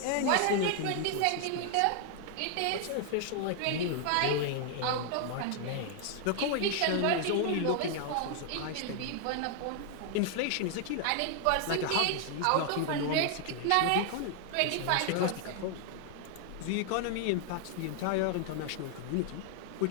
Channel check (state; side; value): different; both; correlation 0.00